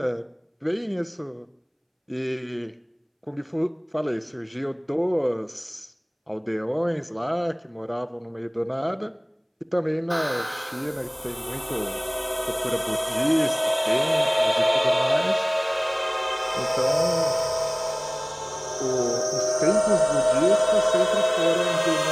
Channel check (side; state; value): both; identical; correlation 1.00